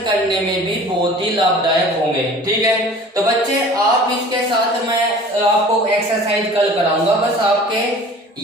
करने में भी बहुत ही लाभदायक होंगे, ठीक है। तो बच्चे आप इसके साथ मैं आपको एक्सरसाइज कल कराऊंगा। बस आपके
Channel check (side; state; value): both; normal; correlation 0.44